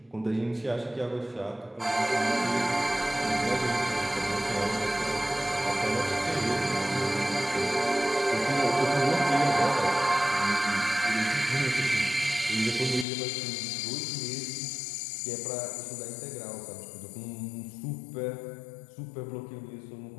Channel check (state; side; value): drops out; right; at 13.1 s